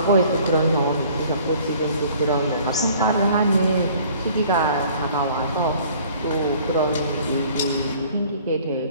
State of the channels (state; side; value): inverted; both; correlation -0.53